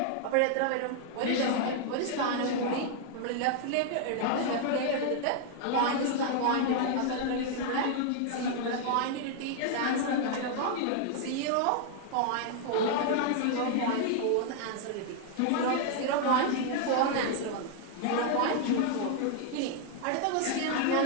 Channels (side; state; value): both; different; correlation 0.00